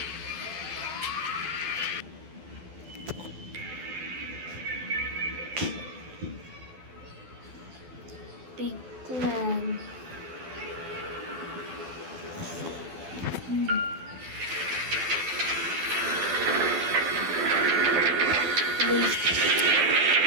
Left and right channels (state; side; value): late; left; 12 ms